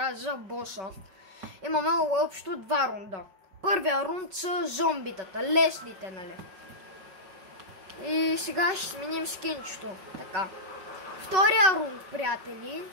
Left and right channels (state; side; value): late; left; 5.3 ms